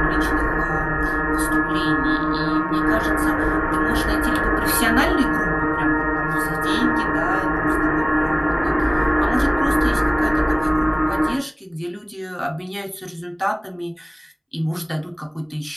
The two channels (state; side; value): identical; both; correlation 1.00